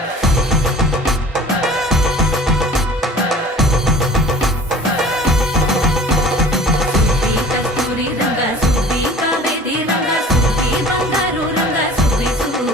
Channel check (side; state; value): both; normal; correlation 0.45